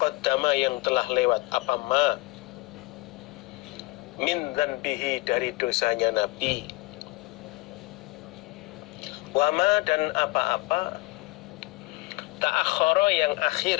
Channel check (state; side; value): quieter; right; 23.0 dB